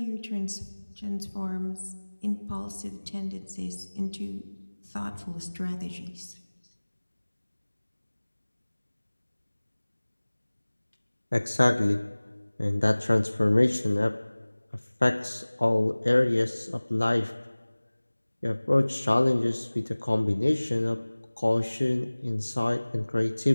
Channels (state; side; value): inverted; both; correlation -1.00